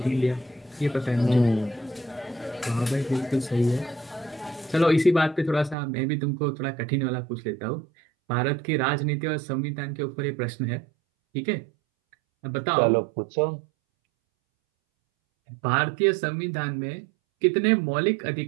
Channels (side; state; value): left; drops out; at 5.8 s